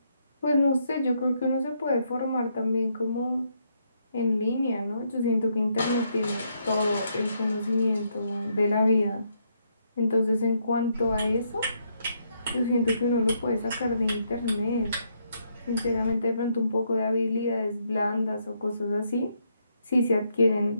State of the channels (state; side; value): inverted; both; correlation -0.76